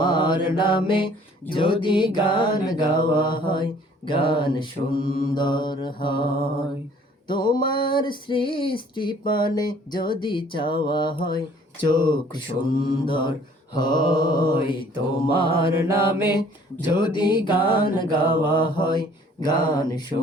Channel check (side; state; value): both; normal; correlation 0.56